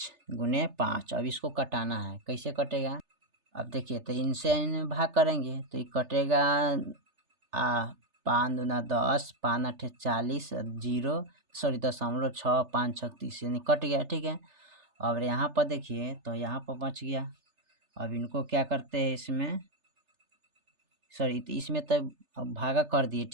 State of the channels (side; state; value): left; late; 3.3 ms